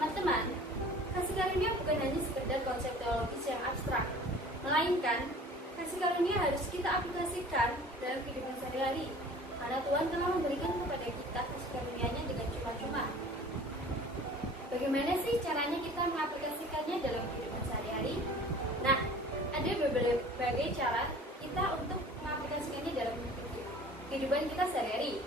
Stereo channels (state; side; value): normal; both; correlation 0.46